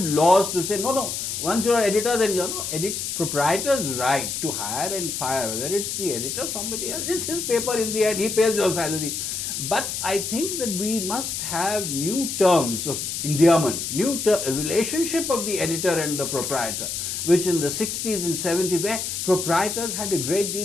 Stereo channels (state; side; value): noise; left; hiss, 4 dB below the sound